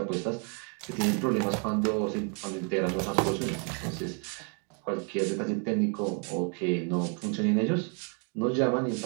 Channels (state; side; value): quieter; left; 39.2 dB